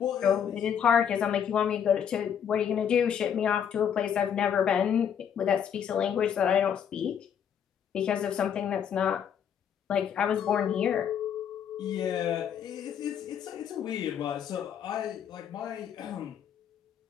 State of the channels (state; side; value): quieter; right; 8.3 dB